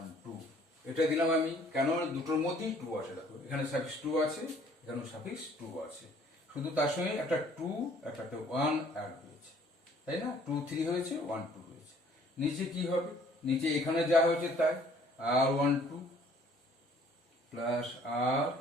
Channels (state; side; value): normal; both; correlation 0.58